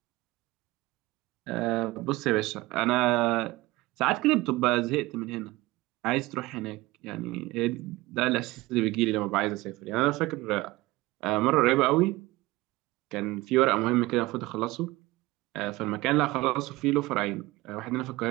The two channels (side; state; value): left; quieter; 20.1 dB